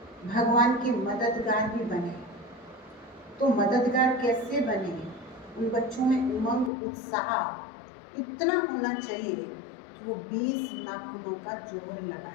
भगवान के मददगार भी बने। तो मददगार कैसे बने? उन बच्चों में उमंग, उत्साह इतना होना चाहिए कि वो 20 नाखूनों का जोर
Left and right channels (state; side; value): drops out; right; at 6.7 s